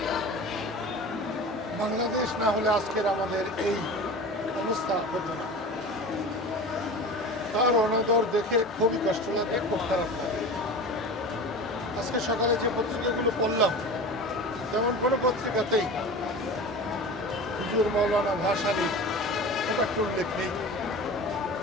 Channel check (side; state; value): both; normal; correlation 0.33